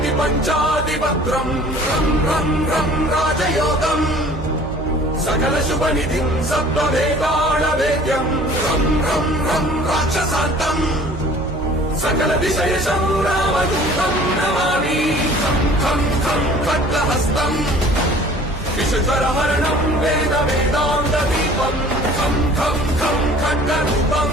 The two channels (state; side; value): noise; right; hum, 11 dB below the sound